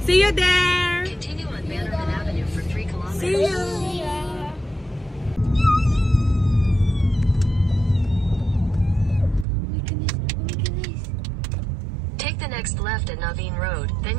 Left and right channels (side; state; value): left; drops out; at 9.5 s